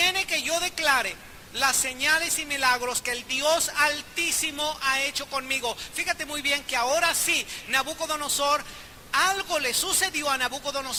que yo declare las señales y milagros que el Dios Altísimo ha hecho conmigo. Fíjate muy bien que ahora sí, Nabucodonosor, algo le sucedió a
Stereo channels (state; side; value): identical; both; correlation 1.00